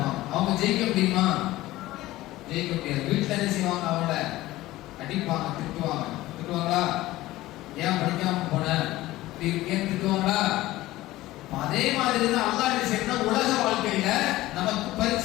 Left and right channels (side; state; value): right; quieter; 17.0 dB